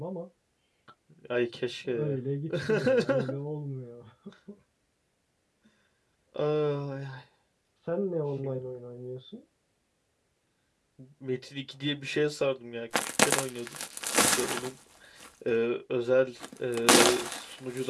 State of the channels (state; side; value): identical; both; correlation 1.00